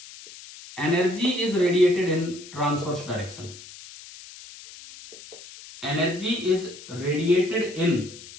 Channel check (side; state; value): left; noise; hiss, 17 dB below the sound